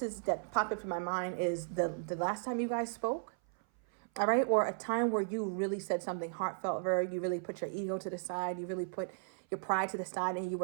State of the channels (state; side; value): silent; left; 54 dB below the other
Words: popped up in my mind is the last time you guys spoke, all right? Or a time where you really said something heartfelt, you really put your ego to the side, you really put your pride to the side, and you